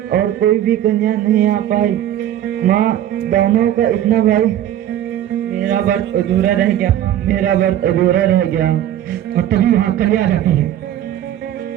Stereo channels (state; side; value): quieter; left; 11.7 dB